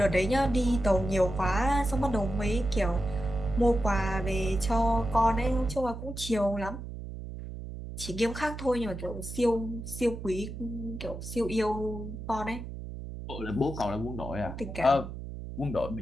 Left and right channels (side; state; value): right; noise; hum, 9 dB below the sound